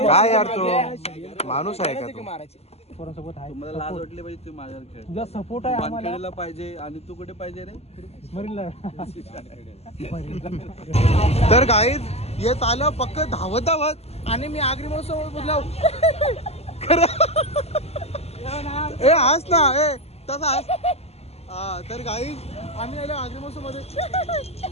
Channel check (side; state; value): right; late; 0.30 ms